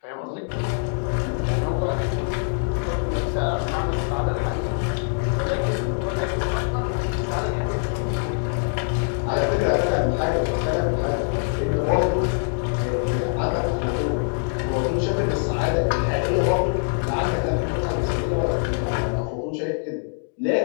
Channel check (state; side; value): silent; right; digital silence